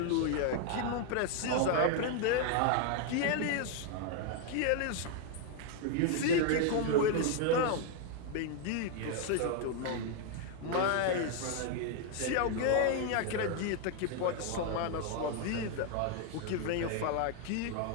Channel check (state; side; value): different; both; correlation 0.01